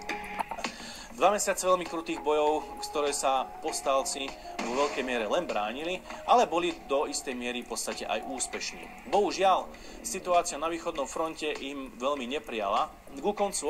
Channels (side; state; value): both; identical; correlation 1.00